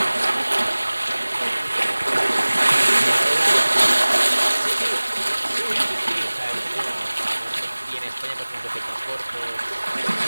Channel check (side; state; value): both; inverted; correlation -1.00